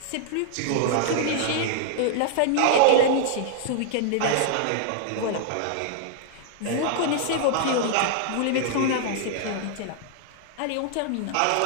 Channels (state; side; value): different; both; correlation -0.01